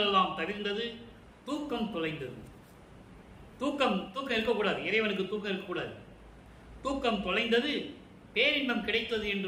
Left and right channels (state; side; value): identical; both; correlation 1.00